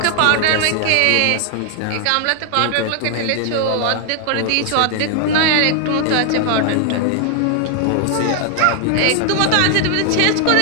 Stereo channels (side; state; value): both; different; correlation 0.00